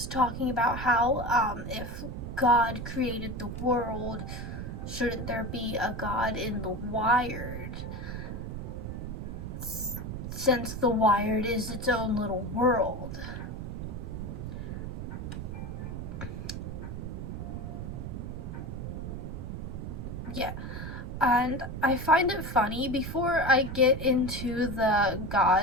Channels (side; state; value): right; noise; rumble, 6 dB below the sound